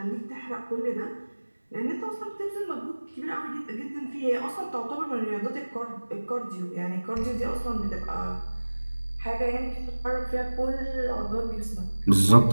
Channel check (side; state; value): both; inverted; correlation -1.00